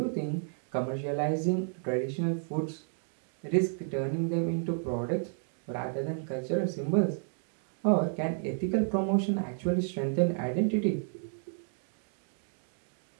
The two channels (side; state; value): left; silent; digital silence